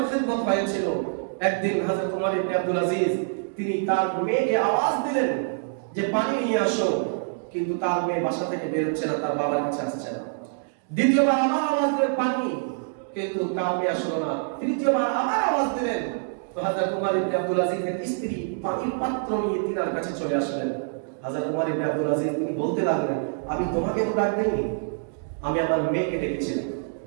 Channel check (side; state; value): left; silent; digital silence